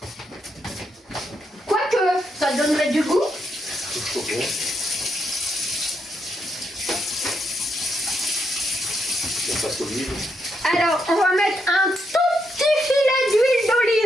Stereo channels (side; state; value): both; normal; correlation 0.79